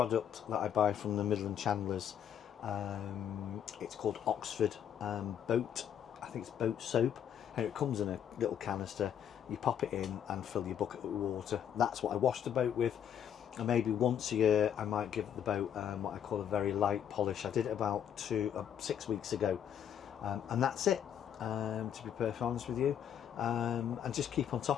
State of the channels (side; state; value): right; quieter; 9.2 dB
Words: that I buy from the Midland Chandlers. It's called Oxford Boat. I think it's boat soap, and it comes in a little canister. You pop it in and fill your bucket with water. That's what I wash the boat with. And maybe once a year I might give the boat what I call a very light polish. I did it about 6 weeks ago, and that's it. To be perfectly honest with you, and just keep on